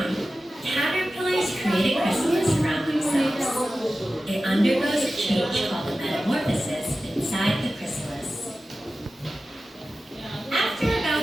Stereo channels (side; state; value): both; normal; correlation 0.94